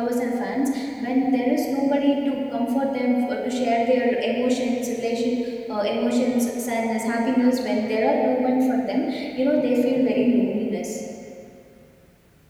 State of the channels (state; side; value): identical; both; correlation 1.00